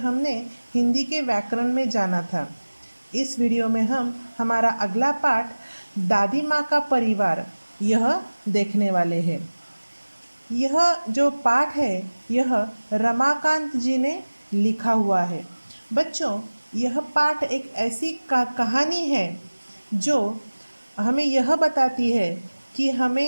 हिंदी के व्याकरण में जाना था। इस वीडियो में हम हमारा अगला पाठ दादी माँ का परिवार यह देखने वाले हैं। यह जो पाठ है यह रमाकांत जी ने लिखा हुआ है। बच्चों, यह पाठ एक ऐसी कहानी है जो हमें यह बताती है कि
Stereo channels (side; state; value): both; inverted; correlation -1.00